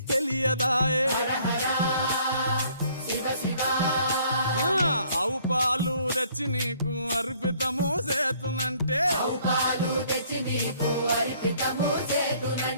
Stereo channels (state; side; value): inverted; both; correlation -0.61